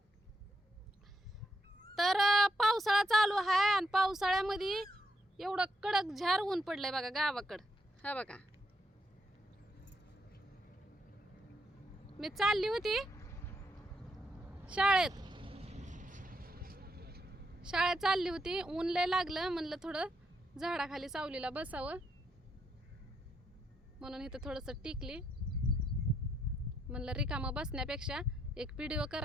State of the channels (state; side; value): normal; both; correlation 0.79